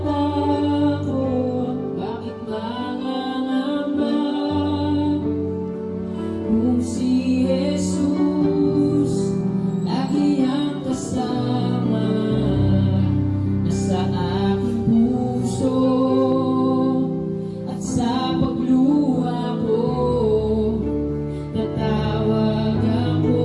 Bakit mangangamba? Kung si Jesus lagi ang kasama, nasa aking puso at sa pagluha ko, tatawag ako,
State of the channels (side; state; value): both; identical; correlation 1.00